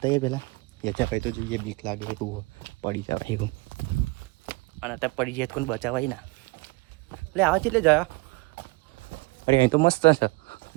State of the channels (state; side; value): quieter; left; 25.2 dB